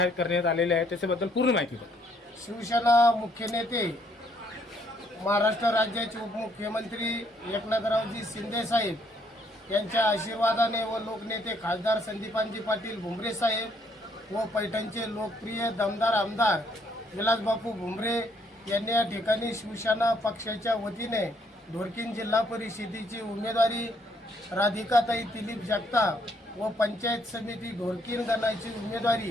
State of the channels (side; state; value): both; normal; correlation 0.68